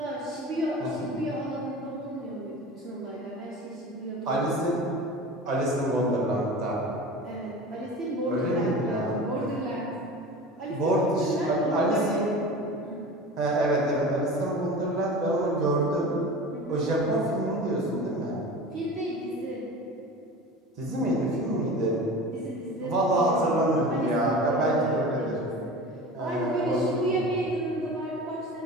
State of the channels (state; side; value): normal; both; correlation 0.35